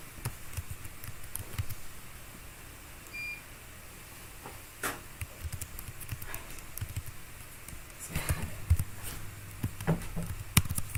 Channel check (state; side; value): identical; both; correlation 1.00